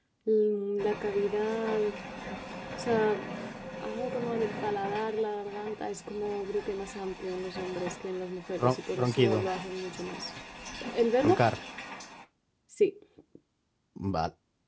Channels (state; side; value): identical; both; correlation 1.00